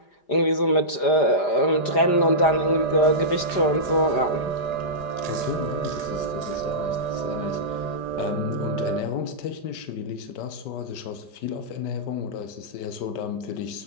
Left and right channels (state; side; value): late; right; 5.0 ms